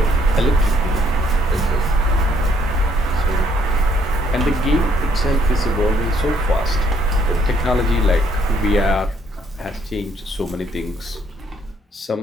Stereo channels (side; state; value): both; normal; correlation 0.68